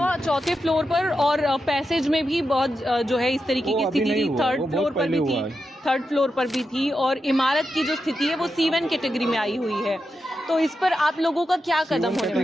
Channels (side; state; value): both; normal; correlation 0.88